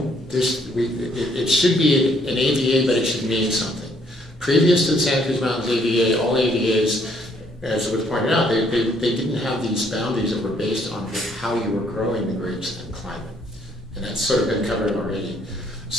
it should be an AVA, but it should mean something. Previous to the Santa Cruz Mountains AVA, all AVAs, as was pointed out, they didn't have these boundaries that were based on how you were growing the grapes and climate. And that's sort of been covered already.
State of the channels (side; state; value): both; normal; correlation 0.67